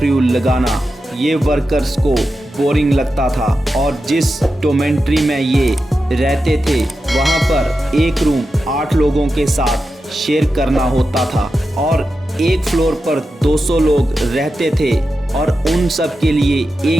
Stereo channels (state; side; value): normal; both; correlation 0.90